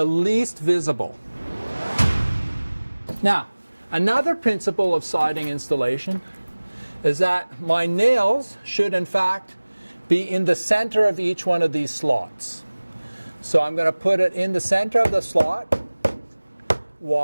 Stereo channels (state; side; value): inverted; both; correlation -1.00